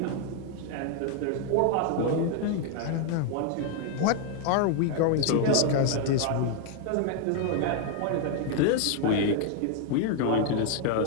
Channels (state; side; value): different; both; correlation 0.00